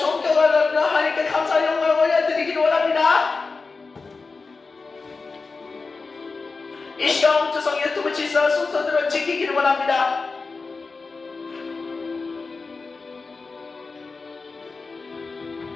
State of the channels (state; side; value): quieter; right; 4.2 dB